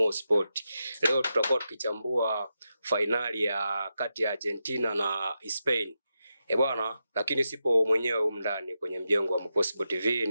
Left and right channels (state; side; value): inverted; both; correlation -0.87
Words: Sport. Leo tutakuwa tukichambua finali ya kati ya Argentina na Spain. Bwana, lakini sipo mwenyewe humu ndani kwenye mjengo wa Mo Sport TV,